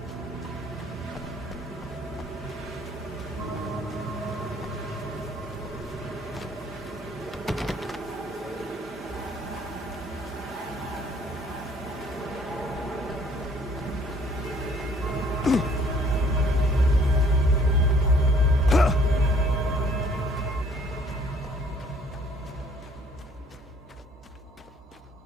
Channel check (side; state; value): both; normal; correlation 0.59